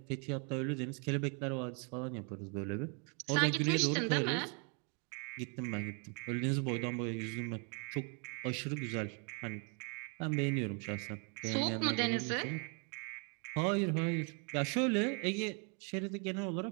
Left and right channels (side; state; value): left; quieter; 37.2 dB